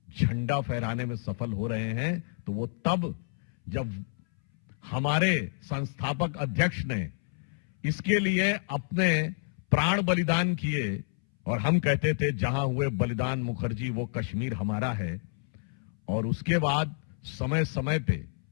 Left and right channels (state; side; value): silent; right; 59 dB below the other